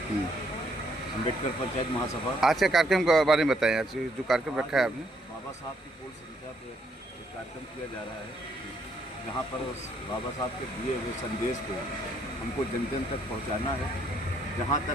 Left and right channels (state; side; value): normal; both; correlation 0.70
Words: अम्बेडकर पंचायत महासभा। आज के कार्यक्रम के बारे में बताएं। आज जो कार्यक्रम रखा है आपने, बाबा साहब की पूर्ण संख्या पे एक कार्यक्रम किया जा रहा है, जहाँ पर बाबा साहब के दिए हुए संदेश को हमको जन जन तक पहुँचाना है। जहाँ तक